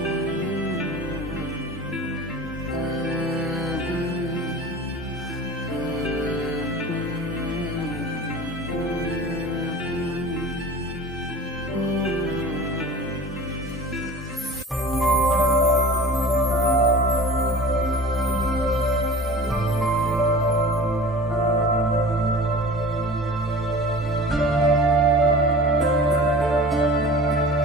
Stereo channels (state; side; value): normal; both; correlation 0.39